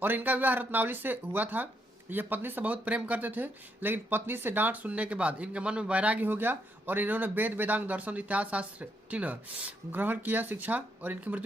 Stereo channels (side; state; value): both; normal; correlation 0.77